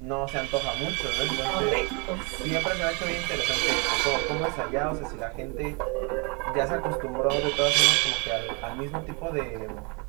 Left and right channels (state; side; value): quieter; left; 32.3 dB